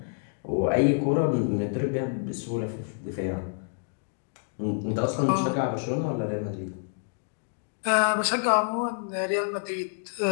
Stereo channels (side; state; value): right; silent; digital silence